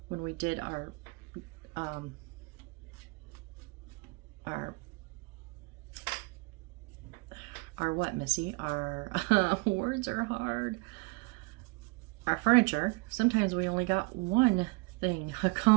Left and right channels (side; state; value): left; quieter; 27.2 dB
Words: when we did our what, Missy? Our words are hard. Our furniture, sometimes we only got 1 thing